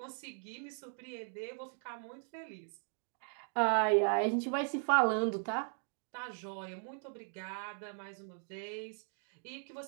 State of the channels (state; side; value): silent; left; 52 dB below the other